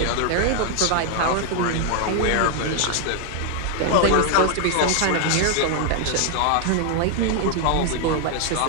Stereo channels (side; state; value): both; different; correlation 0.00